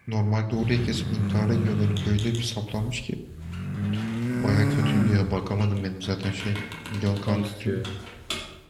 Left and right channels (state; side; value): identical; both; correlation 1.00